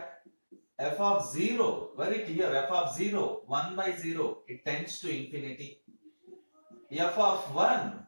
f of 0, very clear, f of 0, 1 by 0, it tends to infinity. F of 1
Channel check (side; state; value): both; inverted; correlation -1.00